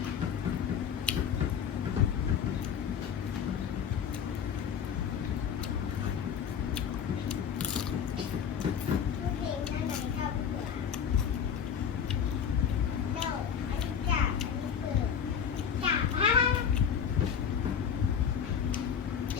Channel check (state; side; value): quieter; right; 7.7 dB